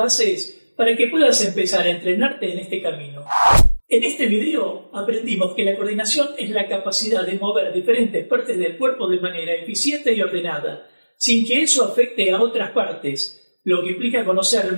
para que puedas empezar a entrenarte en este camino. En este video aprendimos que la coordinación es la capacidad de mover diferentes partes del cuerpo de manera eficiente y ordenada, sin que eso afecte a otras partes, lo que implica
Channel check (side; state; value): both; inverted; correlation -1.00